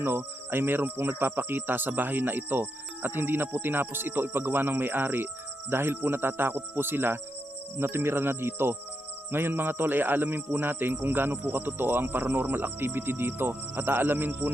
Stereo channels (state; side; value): normal; both; correlation 0.83